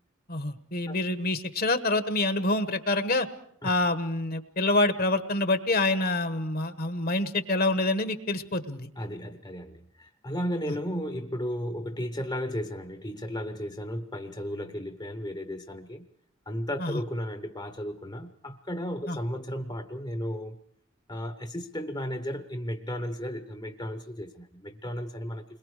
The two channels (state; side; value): normal; both; correlation 0.22